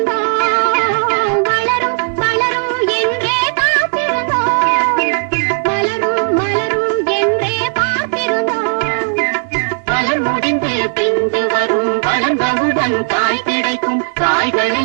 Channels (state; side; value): silent; left; digital silence